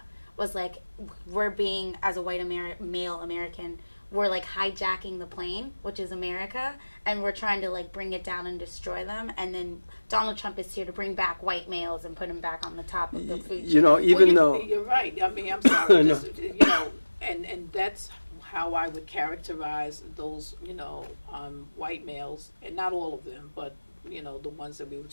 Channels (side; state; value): both; inverted; correlation -1.00